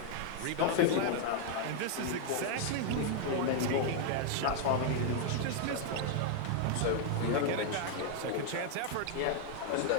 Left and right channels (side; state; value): both; different; correlation 0.00